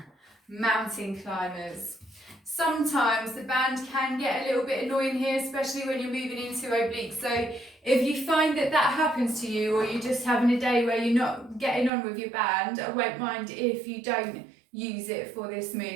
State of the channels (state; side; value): drops out; left; at 11.9 s